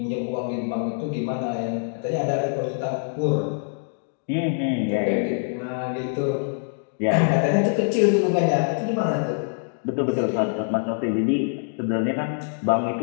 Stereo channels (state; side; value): silent; right; digital silence